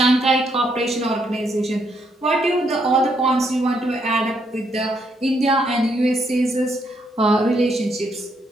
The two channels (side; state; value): both; normal; correlation 0.75